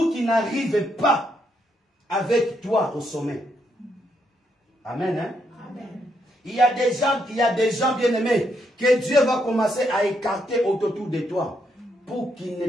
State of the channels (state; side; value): normal; both; correlation 0.77